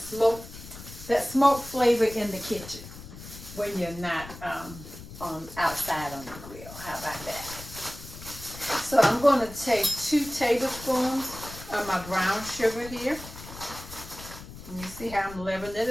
that smoke flavor in the kitchen when you're not outside on the grill. How about that? So I'm going to take 2 tablespoons of my brown sugar here. And you see how I'm leveling it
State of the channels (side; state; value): left; noise; rumble, 14 dB below the sound